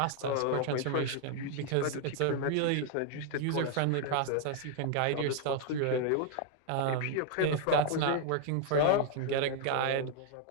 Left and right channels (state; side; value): different; both; correlation 0.00